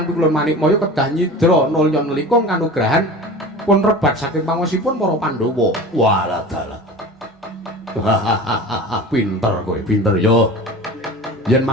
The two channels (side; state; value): both; normal; correlation 0.36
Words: Pikulun Manikmaya kedah nyidra nulya nelikung kanugrahan pun rebat saking pangosipun para Pandhawa. Walah dalah. Pinter kowe, pinter yo. Yen